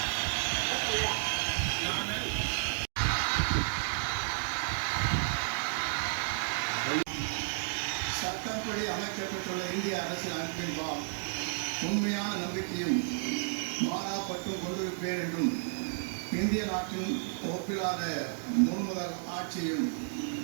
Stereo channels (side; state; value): left; silent; digital silence